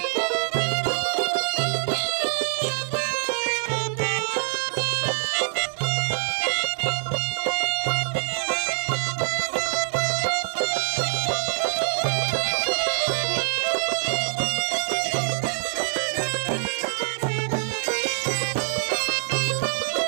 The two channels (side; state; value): left; silent; 58 dB below the other